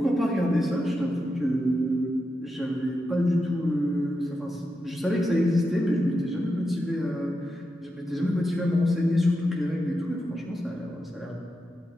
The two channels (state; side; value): normal; both; correlation 0.88